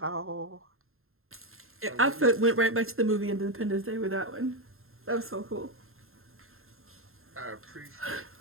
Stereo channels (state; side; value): late; left; 0.61 ms